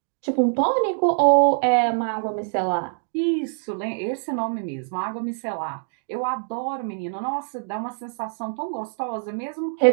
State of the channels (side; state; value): left; silent; digital silence